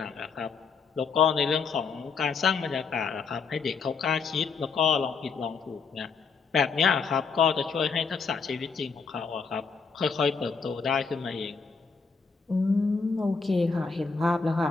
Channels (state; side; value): quieter; right; 5.2 dB